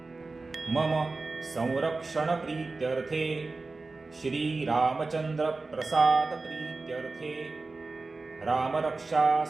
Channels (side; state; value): left; quieter; 3.7 dB